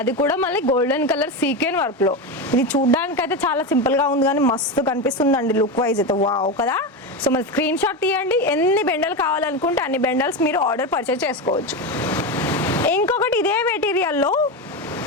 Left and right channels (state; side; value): normal; both; correlation 0.16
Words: కూడా మళ్ళీ గోల్డెన్ కలర్ సీక్వెన్ వర్క్లో. ఇది చూడ్డానికి అయితే చాలా సింపుల్గా ఉంది కానీ మస్తు కనిపిస్తుందండి లుక్ వైజ్ అయితే. వావ్ కదా. సో మరి స్క్రీన్ షాట్ తీయండి. ఎన్ని బెండలు కావాలనుకుంటే అన్ని బెండల్స్ మీరు ఆర్డర్ పర్చేస్ చేసుకోవచ్చు. ఇంకొకటి ఇదే మెటీరియల్లో